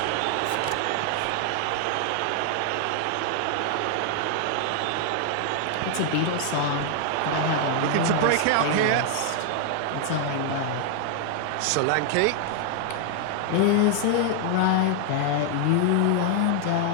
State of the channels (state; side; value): different; both; correlation 0.00